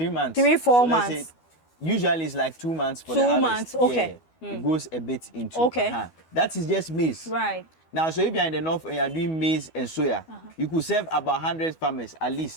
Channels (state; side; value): late; right; 12 ms